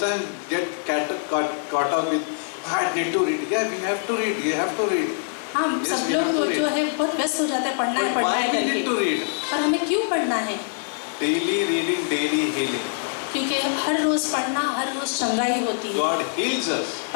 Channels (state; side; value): silent; right; 61 dB below the other